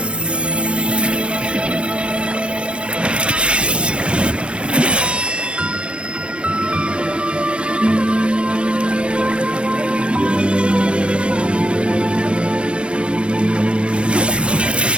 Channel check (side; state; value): left; late; 0.058 ms